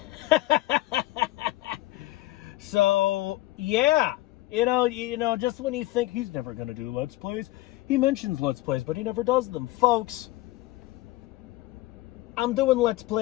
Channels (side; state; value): right; quieter; 17.4 dB